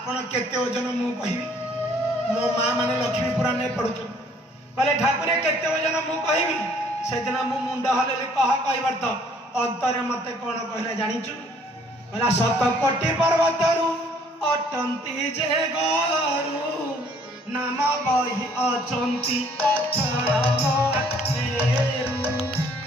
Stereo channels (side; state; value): both; normal; correlation 0.60